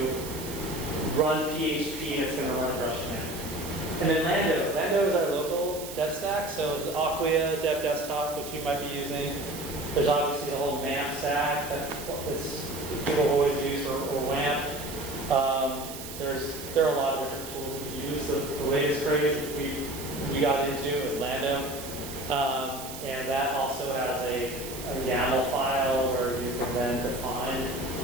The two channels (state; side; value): noise; right; hiss, 11 dB below the sound